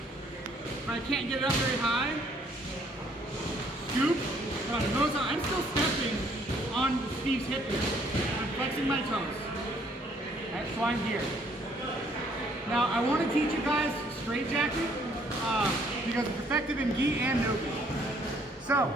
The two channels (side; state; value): both; normal; correlation 0.64